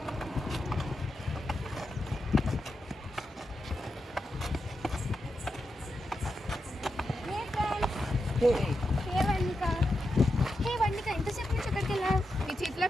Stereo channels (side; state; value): both; normal; correlation 0.87